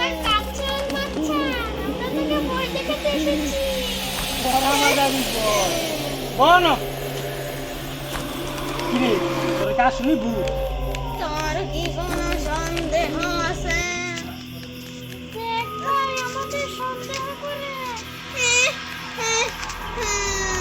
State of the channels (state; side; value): identical; both; correlation 1.00